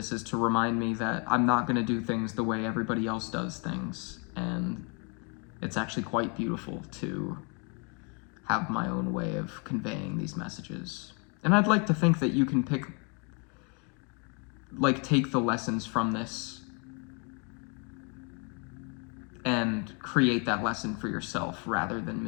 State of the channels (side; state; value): right; quieter; 35.1 dB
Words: is to remind me that I'm not going to do things the way everybody else does things, and it's actually quite beautiful to have my own way of conveying these messages. And I'd like to think that you can take the lessons from this and create that lesson for yourself rather than